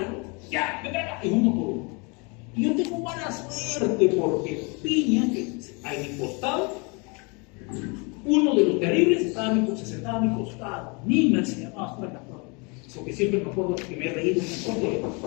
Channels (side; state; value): right; quieter; 31.1 dB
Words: ya, y uno por uno. Y yo tengo mala suerte porque piña, que a mi costado, uno de los terribles se sentaba a mi costado. Nima se llamaba hasta la prueba. Porque siempre me acuerdo que me he reído un poco.